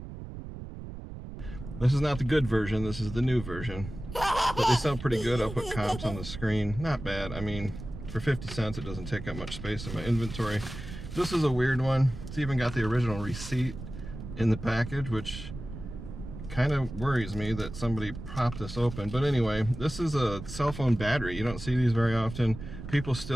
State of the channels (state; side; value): noise; right; rumble, 11 dB below the sound